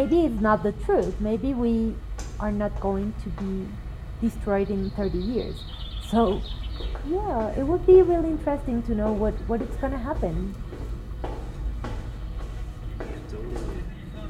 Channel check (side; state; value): both; identical; correlation 1.00